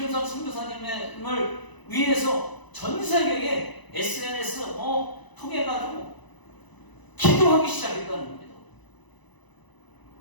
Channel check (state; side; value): late; right; 1.0 ms